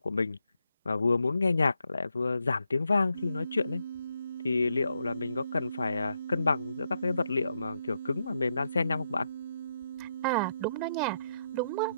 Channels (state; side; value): inverted; both; correlation -0.81